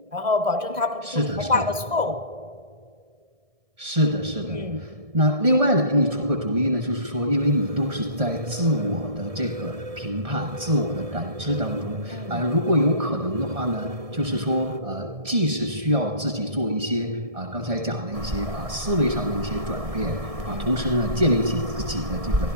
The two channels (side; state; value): left; late; 1.6 ms